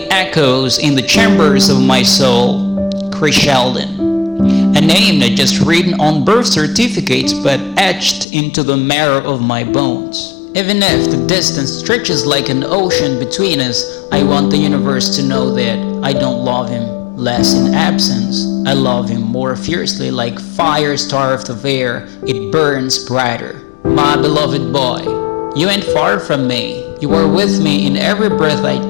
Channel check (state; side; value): drops out; right; at 8.2 s